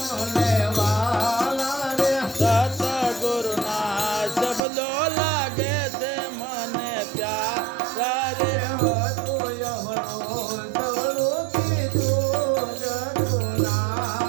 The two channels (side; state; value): left; drops out; at 4.6 s